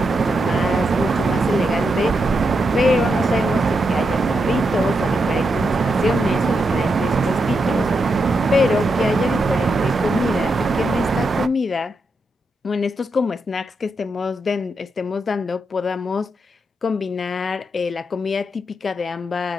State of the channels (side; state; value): both; normal; correlation 0.84